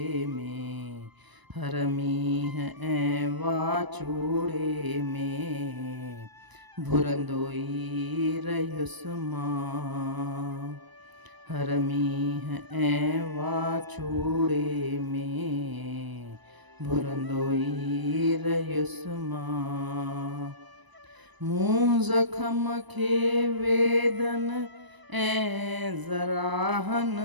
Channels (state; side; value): late; left; 1.0 ms